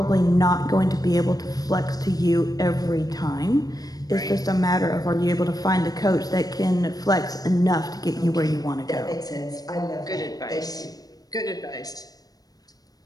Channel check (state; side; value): late; right; 0.18 ms